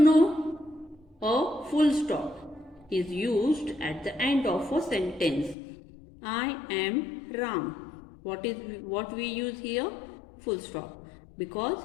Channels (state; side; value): drops out; right; at 5.6 s